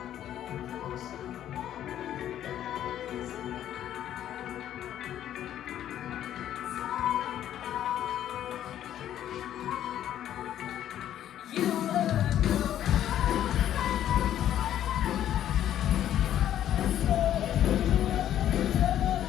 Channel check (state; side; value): quieter; right; 11.3 dB